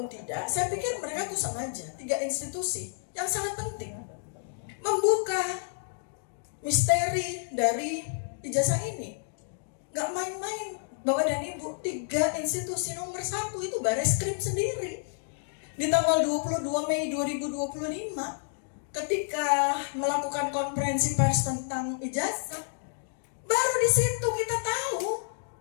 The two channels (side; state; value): right; silent; digital silence